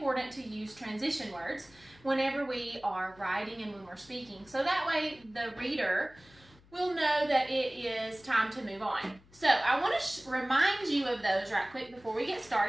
to use transition words whenever we are writing and when we're speaking. So that way the reader will know that it is time to move on. So I want to remind you of those right quick before we get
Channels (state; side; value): noise; left; hum, 26 dB below the sound